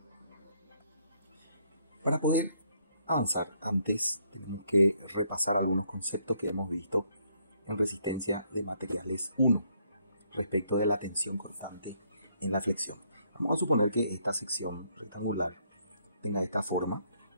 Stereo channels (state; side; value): inverted; both; correlation -0.70